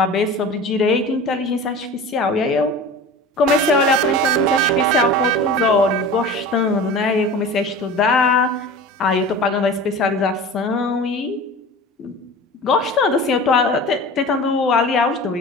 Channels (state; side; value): normal; both; correlation 0.36